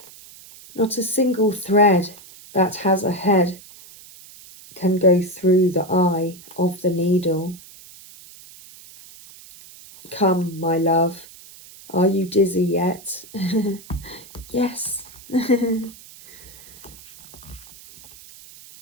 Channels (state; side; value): noise; right; hiss, 20 dB below the sound